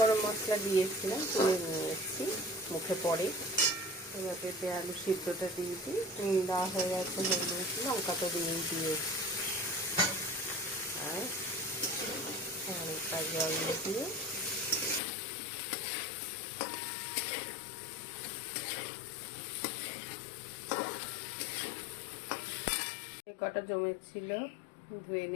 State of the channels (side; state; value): right; drops out; at 15.0 s